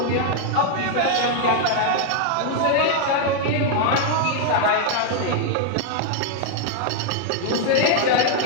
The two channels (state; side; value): different; both; correlation 0.00